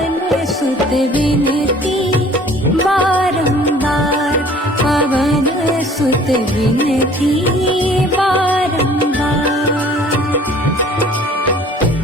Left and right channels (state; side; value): normal; both; correlation 0.52